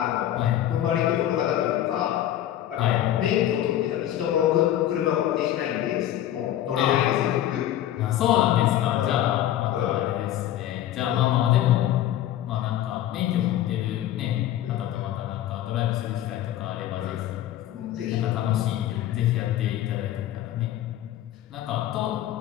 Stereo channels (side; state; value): right; quieter; 12.3 dB